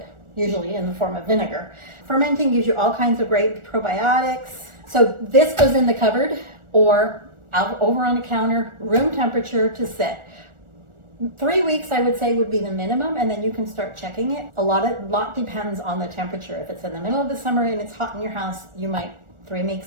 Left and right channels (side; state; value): left; late; 1.4 ms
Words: usually in the form of vinegar. Fermenting gives you all kinds of great probiotics. So this goes in the cupboard or out over on the counter, room temperature to sit. 3 weeks, I would say, would be the minimum, and then you can start checking it. A lot depends on the temperature. If it's in the middle of the summer and it's hot in your house, 3